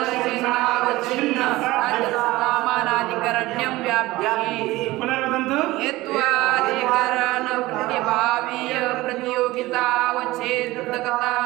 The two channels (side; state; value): left; quieter; 18.9 dB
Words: साध्यसामानाधिकरण्यं व्याप्तिः पुनर्वदन्तु हेत्वाधिकरण प्रतिभावीय